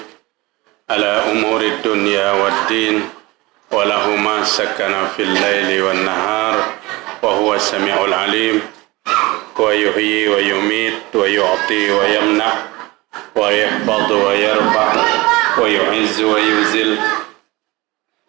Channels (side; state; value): left; quieter; 22.0 dB